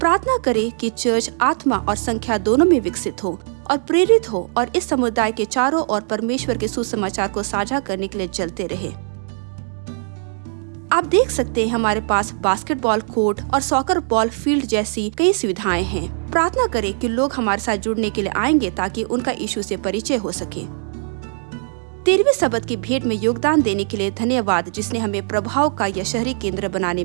करें कि चर्च आत्मा और संख्या दोनों में विकसित हो और प्रेरित हो और इस समुदाय के चारों ओर परमेश्वर के सुसमाचार को साझा करने के लिए चलते रहे। आप देख सकते हैं, हमारे पास बास्केटबॉल कोर्ट और सॉकर बॉल फील्ड जैसी कई सुविधाएं हैं। प्रार्थना करें कि लोग हमारे साथ जुड़ने के लिए आएंगे ताकि उनका यीशु से परिचय हो सके। 13वीं सबत की भेंट में योगदान देने के लिए धन्यवाद, जिसने हमें प्रभाव का यह शहरी केंद्र बनाने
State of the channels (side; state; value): left; silent; 65 dB below the other